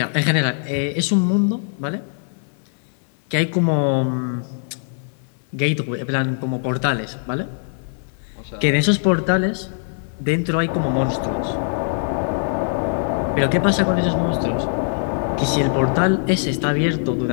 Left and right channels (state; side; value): silent; right; digital silence